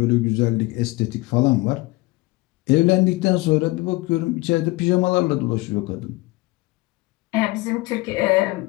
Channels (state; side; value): quieter; right; 21.5 dB